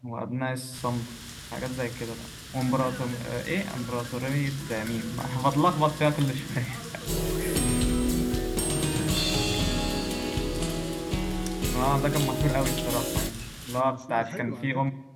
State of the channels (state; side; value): identical; both; correlation 1.00